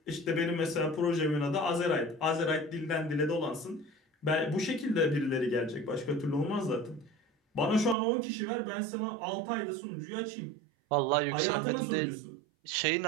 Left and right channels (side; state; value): left; drops out; at 8.0 s